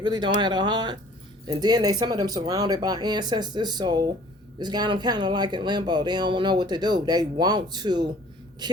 don't have a heart. And then some of them surrounded by ancestors, so it's got them kind of like in limbo. They don't know what to do. They want to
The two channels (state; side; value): normal; both; correlation 0.52